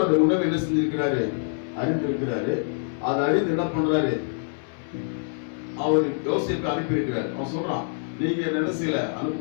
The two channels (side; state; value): right; silent; 61 dB below the other